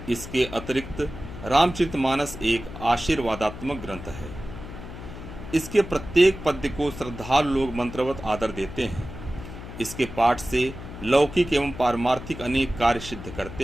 इसके अतिरिक्त रामचरितमानस एक आशीर्वादात्मक ग्रंथ है। इसके प्रत्येक पद्य को श्रद्धालु लोग मंत्रवत आदर देते हैं। इसके पाठ से लौकिक एवं पारमार्थिक अनेक कार्य सिद्ध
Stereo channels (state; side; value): noise; left; hum, 12 dB below the sound